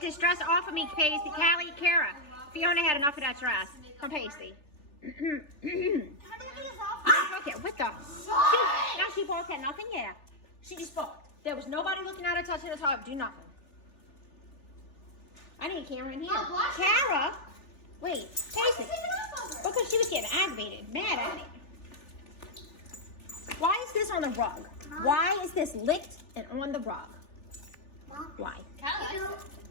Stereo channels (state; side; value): late; right; 3.4 ms